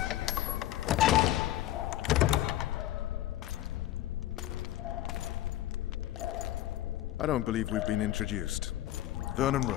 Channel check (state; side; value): quieter; right; 14.0 dB